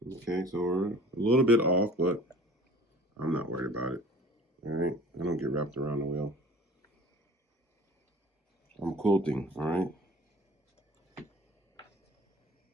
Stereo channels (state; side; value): normal; both; correlation 0.46